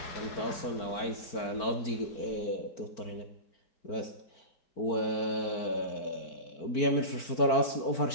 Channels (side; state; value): right; late; 4.5 ms